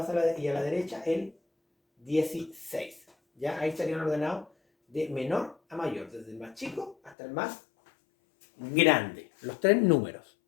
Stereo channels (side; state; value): right; drops out; at 7.2 s